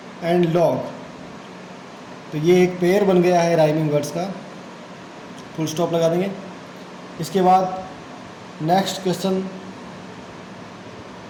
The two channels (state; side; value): identical; both; correlation 1.00